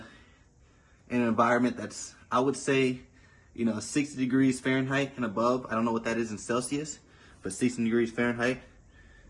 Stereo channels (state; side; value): identical; both; correlation 1.00